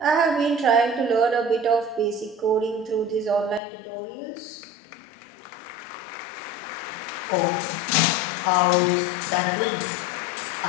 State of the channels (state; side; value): drops out; right; at 3.6 s